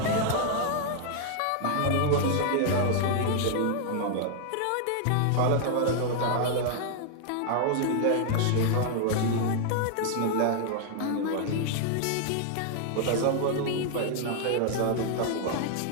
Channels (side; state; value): both; different; correlation 0.00